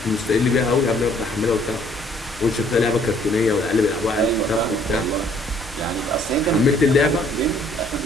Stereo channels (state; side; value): noise; right; hum, 20 dB below the sound